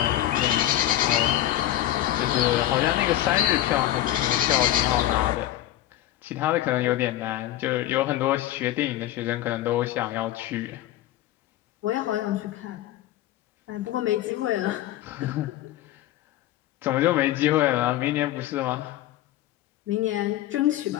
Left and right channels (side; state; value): right; quieter; 13.7 dB